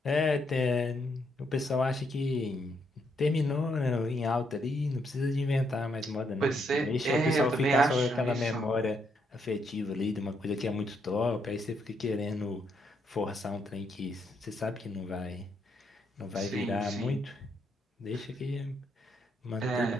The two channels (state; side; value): normal; both; correlation 0.76